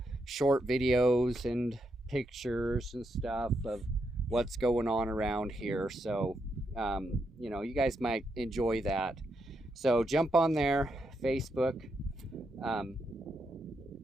short videos and pictures and stuff of what's going on around here. So, you guys might enjoy that. So jump on there, Facebook,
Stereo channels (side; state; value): both; normal; correlation 0.81